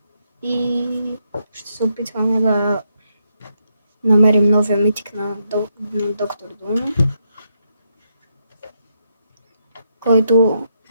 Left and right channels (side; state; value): both; inverted; correlation -0.79